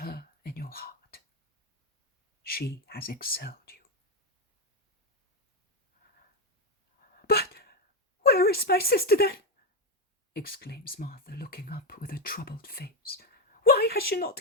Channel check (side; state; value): both; normal; correlation 0.08